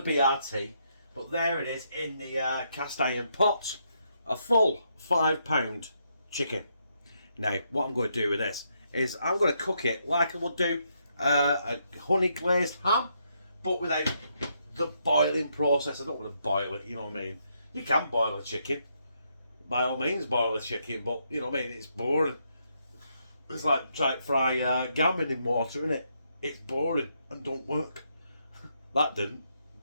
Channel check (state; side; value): inverted; both; correlation -0.77